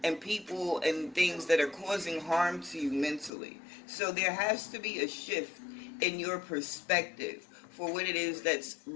people and things that are causing harm to you mentally. So there has to be a shift in your perspective for what it is that's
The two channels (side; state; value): right; drops out; at 3.3 s